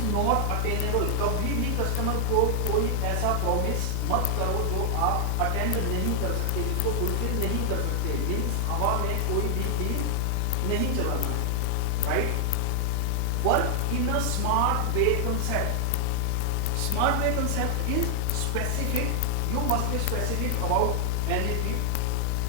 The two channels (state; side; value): different; both; correlation 0.00